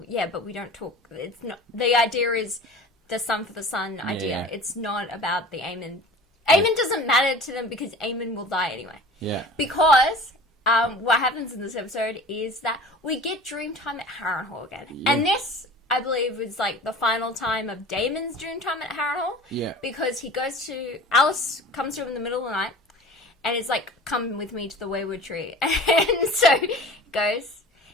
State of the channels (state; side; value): normal; both; correlation 0.41